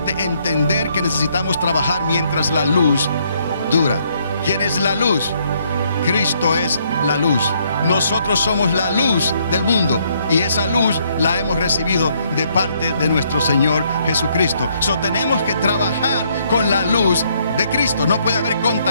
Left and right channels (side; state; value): both; inverted; correlation -0.70